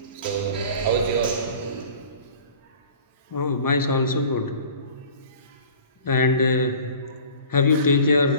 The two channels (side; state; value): both; inverted; correlation -0.44